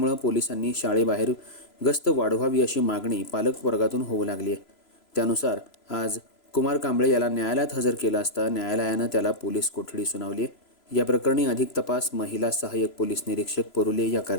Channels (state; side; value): late; right; 3.0 ms